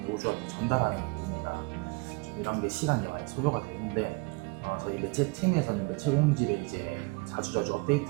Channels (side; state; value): left; quieter; 28.7 dB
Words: 전달하는 부분이라 좀 이런 게 시간이 많이 소요가 되는데 저희 매체 팀에서는 매체 공지를 이제 자주자주 업데이트